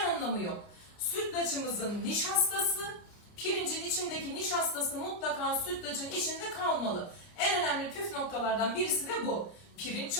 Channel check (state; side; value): late; right; 29 ms